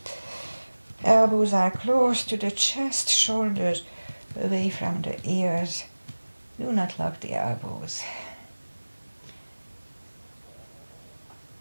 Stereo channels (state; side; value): inverted; both; correlation -1.00